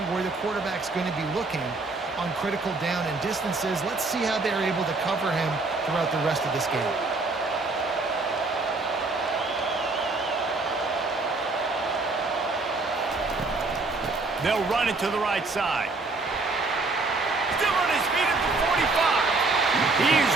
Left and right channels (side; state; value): left; quieter; 3.5 dB